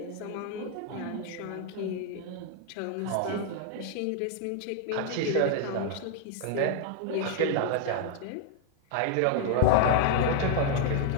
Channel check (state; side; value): different; both; correlation 0.00